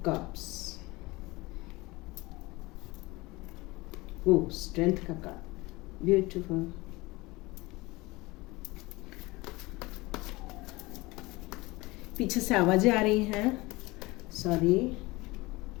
cups, वो स्ट्रेंथ का कार्ड, ब्यूटीफुल। पीछे से आवाजें आ रही हैं, sorry.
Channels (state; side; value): quieter; right; 22.1 dB